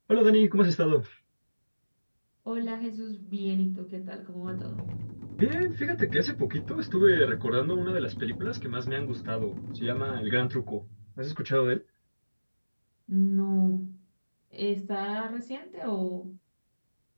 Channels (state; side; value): inverted; both; correlation -1.00